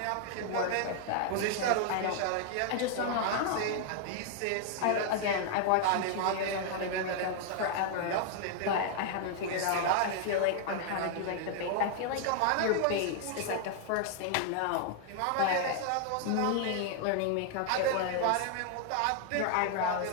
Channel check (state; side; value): different; both; correlation 0.00